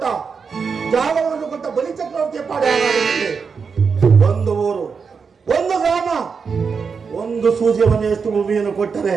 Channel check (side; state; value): left; quieter; 5.6 dB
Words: ಜಾಗವನ್ನು ಕೊಟ್ಟ ಬಲಿ ಚಕ್ರವರ್ತಿಯ ಪಾಡ ಒಂದು ಊರು, ಒಂದು ಗ್ರಾಮ, ಒಂದು ಸೂಜಿಯ ಮನೆಯಷ್ಟು ಭೂಮಿಯನ್ನು ಕೊಟ್ಟರೆ